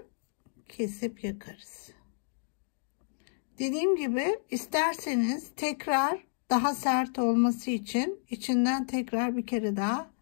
kesip yakarız. Dediğim gibi isterseniz tekrar daha sert olması için içinden tekrar bir kere daha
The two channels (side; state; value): right; silent; digital silence